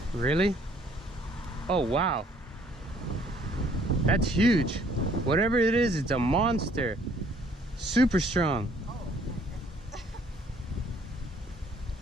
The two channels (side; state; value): both; normal; correlation 0.61